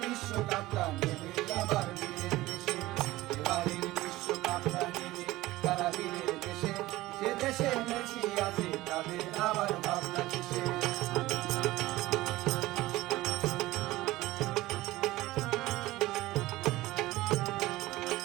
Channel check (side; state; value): left; quieter; 17.9 dB